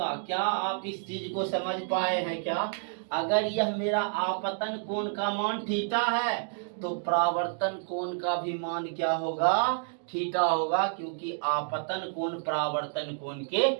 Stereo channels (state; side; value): silent; left; digital silence